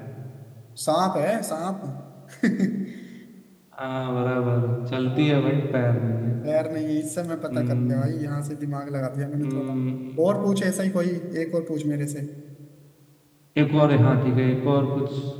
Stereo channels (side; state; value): both; identical; correlation 1.00